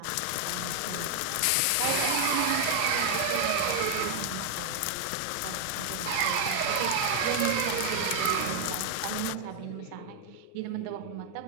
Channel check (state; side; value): different; both; correlation 0.00